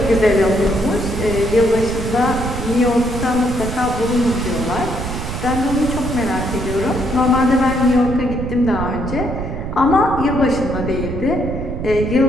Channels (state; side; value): noise; right; rumble, 5 dB below the sound